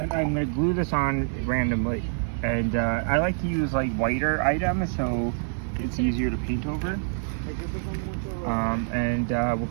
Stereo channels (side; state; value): left; silent; 61 dB below the other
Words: I'm gonna glue this on randomly, and I like to use like whiter items so it's easier to paint over. And we'll